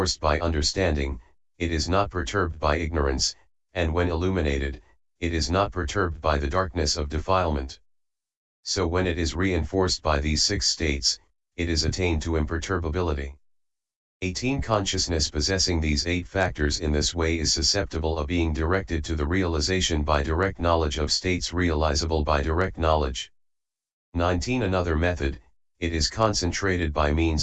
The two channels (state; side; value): identical; both; correlation 1.00